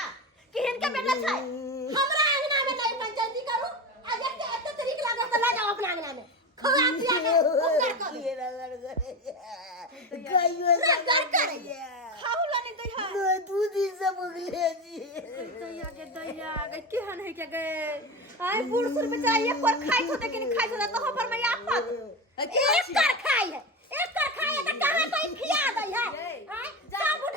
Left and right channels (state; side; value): normal; both; correlation 0.21